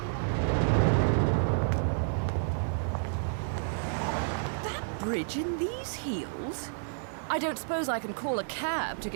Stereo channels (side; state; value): left; silent; digital silence